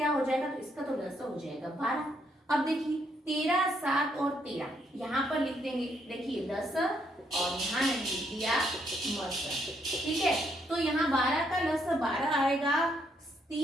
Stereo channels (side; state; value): both; normal; correlation 0.74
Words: हो जाएगा, तो इसका तो लस हो जाएगा 12। अब देखिए 13, 7 और 13 यहाँ पर लिख देंगे, देखिए लस और यहाँ लिख दिया मस, ठीक है। तो यहाँ 12 का लस 12 आएगा,